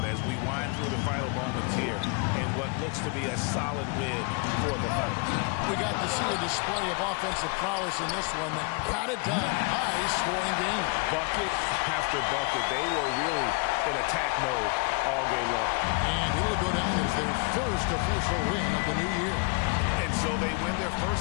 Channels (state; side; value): quieter; right; 31.8 dB